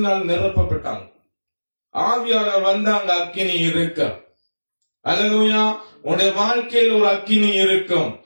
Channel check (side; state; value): both; inverted; correlation -1.00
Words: நிரப்பப்பட்டாங்க. ஆவியானவர் வந்தாங்க, அக்கினி இருக்க. அல்லேலூயா. உன்னுடைய வாழ்க்கையில் ஒரு அக்கினி இருக்கும்,